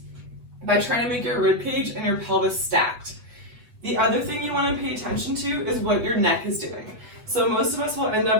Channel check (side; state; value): left; late; 8.4 ms